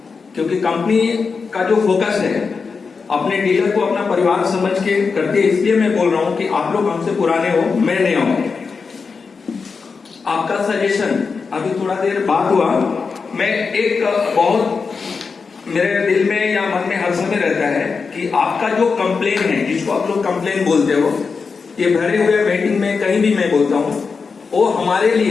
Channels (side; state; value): right; quieter; 5.0 dB